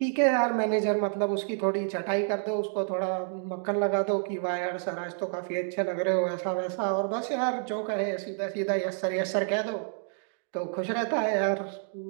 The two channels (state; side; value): silent; left; digital silence